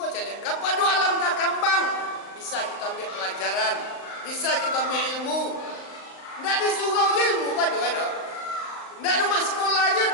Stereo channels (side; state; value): right; late; 38 ms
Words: cari, kepada alam takambang bisa kita ambil pelajaran, bisa kita ambil ilmu. Tidak di surau ilmu kan doa doa. Tidak di sekolah aja